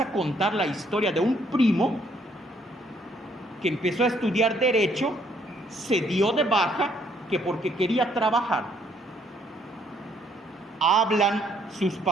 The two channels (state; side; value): normal; both; correlation 0.67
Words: a contar la historia de un primo que empezó a estudiar derecho, se dio de baja, que porque quería trabajar. Hablan sus